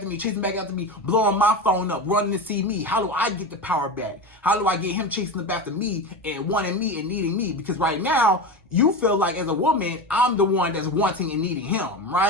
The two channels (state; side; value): normal; both; correlation 0.23